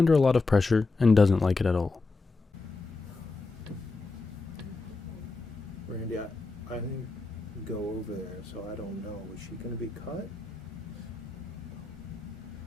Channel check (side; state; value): right; quieter; 3.7 dB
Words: a lot of pressure and doesn't like it at all. Randy, I didn't go over there, so I don't know. Was she going to be cut?